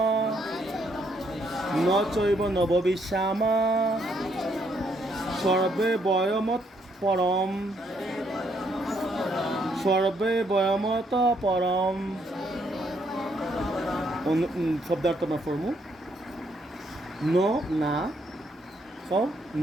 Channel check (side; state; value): both; normal; correlation 0.72